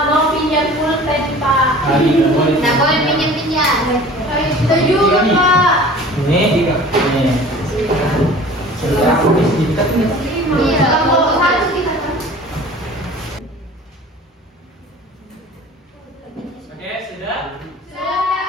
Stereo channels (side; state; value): both; normal; correlation 0.44